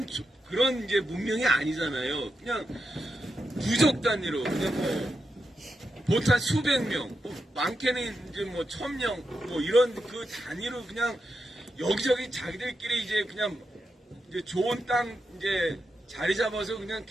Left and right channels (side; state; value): both; normal; correlation 0.87